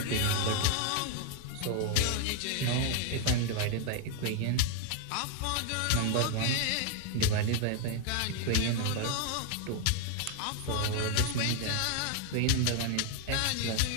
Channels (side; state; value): both; different; correlation 0.00